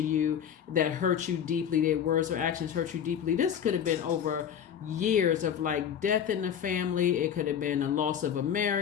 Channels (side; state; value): right; quieter; 8.7 dB